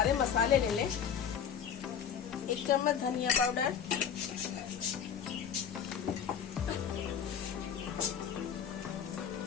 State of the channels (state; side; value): quieter; right; 7.9 dB